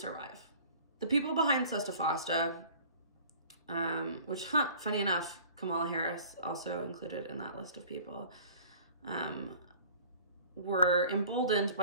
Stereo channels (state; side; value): inverted; both; correlation -0.48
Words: The people behind sesta-fosta, which, funny enough, Kamala Harris also included in that list of people, were emboldened